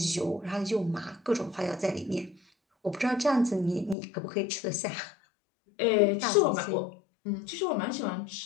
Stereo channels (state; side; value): drops out; right; at 4.0 s